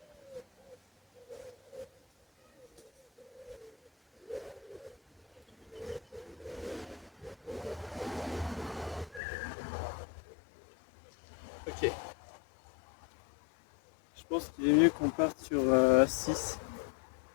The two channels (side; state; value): right; drops out; at 9.2 s